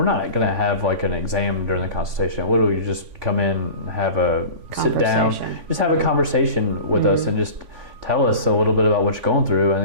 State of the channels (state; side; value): late; left; 3.5 ms